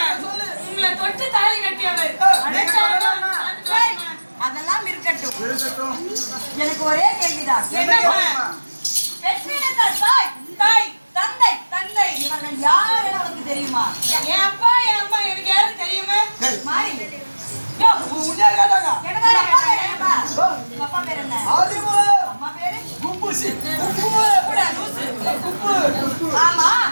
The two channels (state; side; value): inverted; both; correlation -1.00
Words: உங்களை தொட்டு தாலி கட்டியவர் அடைச்சாலும் அதெல்லாம் இருக்கட்டும். இருக்கட்டும். எனக்கு ஒரே கேள்விதான். என்னம்மா? பெற்றெடுத்த தாய், தாய், தந்தை, தந்தை இவர்கள் யார் என உனக்கு தெரியுமா? என் அப்பா என் அம்மா எனக்கு யாரும் தெரியுமா? மாறி. யோ, உன்னையா கேட்டாங்க? எனக்கு ஒரு அப்பா பேர் என்னப்பா? உங்க அப்பா பேர் என்ன? ஆதிமு அம்மா பேரு? கும்புசி கூட லூசு. குப்பு ஆமா.